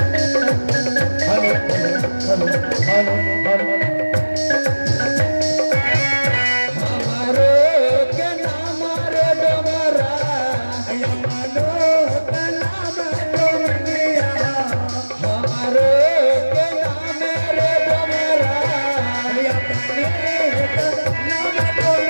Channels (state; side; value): inverted; both; correlation -1.00